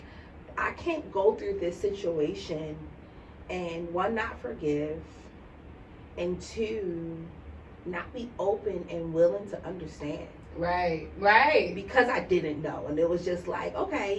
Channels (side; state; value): both; identical; correlation 1.00